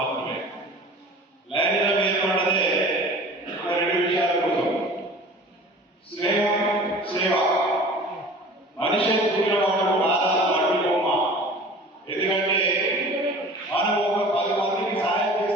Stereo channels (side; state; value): both; normal; correlation 0.42